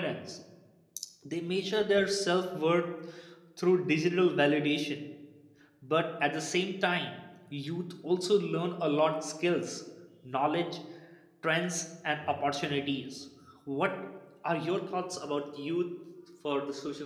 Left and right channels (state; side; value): identical; both; correlation 1.00